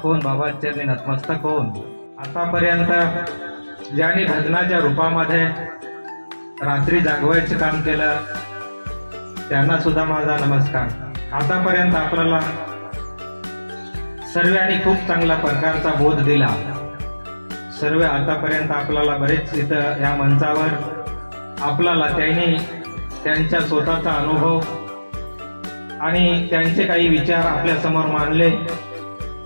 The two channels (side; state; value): both; inverted; correlation -1.00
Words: होऊन बाबांच्या चरणी नतमस्तक होऊन आतापर्यंत ज्यांनी भजनाच्या रूपामध्ये रात्री जागवायचं काम केलं त्यांना सुद्धा माझा नमस्कार। आतापर्यंत आपल्याला सर्वांनी खूप चांगला प्रकारचा बोध दिला। सर्व आतापर्यंत आपल्याला बरेच इथं या मंचावर आपल्याला त्यांनी त्यांच्या स्वतःचा अनुभव आणि त्यांचे काही विचार आपल्या समोर मांडले